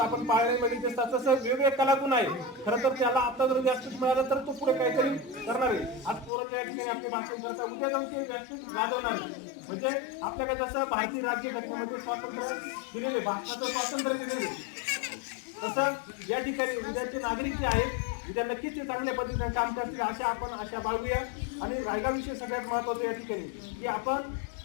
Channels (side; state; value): right; drops out; at 6.3 s